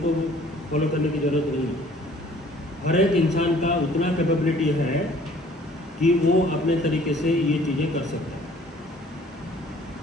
फॉलो करने की जरूरत नहीं है। हर एक इंसान का उतना कैपेबिलिटी है कि वो अपने तरीके से ये चीज़ें कर सकता है।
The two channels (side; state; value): both; normal; correlation 0.55